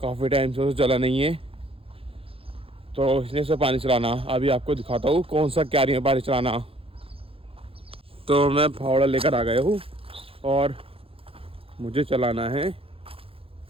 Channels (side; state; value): left; late; 0.27 ms